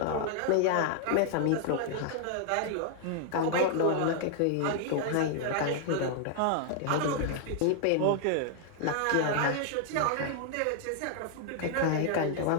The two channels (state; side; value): different; both; correlation 0.00